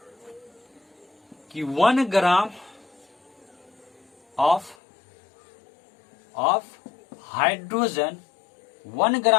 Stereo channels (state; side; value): drops out; right; at 4.8 s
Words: कि 1 gram of hydrogen, 1